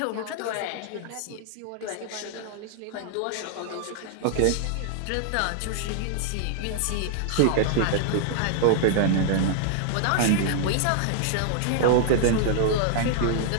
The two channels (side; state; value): both; different; correlation 0.00